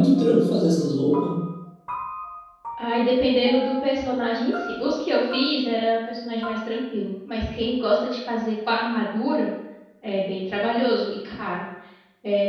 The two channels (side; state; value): both; identical; correlation 1.00